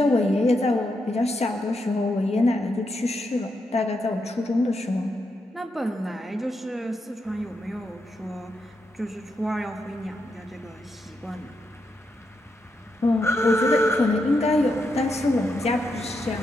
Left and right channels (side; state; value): both; normal; correlation 0.83